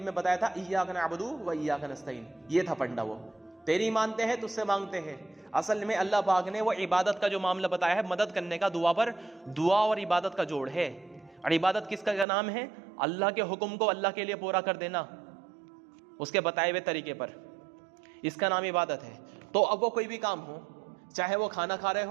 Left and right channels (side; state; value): left; drops out; at 12.2 s